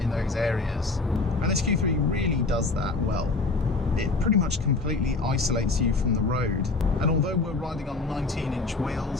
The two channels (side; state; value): right; quieter; 3.7 dB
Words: those areas. And this Q3 really does that well. It pretty much completely isolates you from the road. And although we're riding on 19-inch